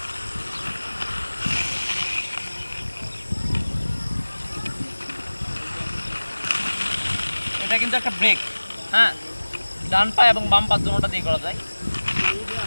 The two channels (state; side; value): inverted; both; correlation -1.00